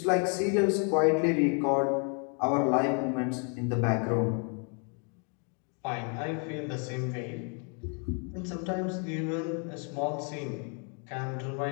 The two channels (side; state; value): right; quieter; 38.9 dB